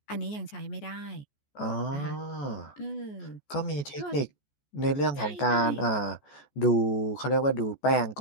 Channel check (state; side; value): late; right; 14 ms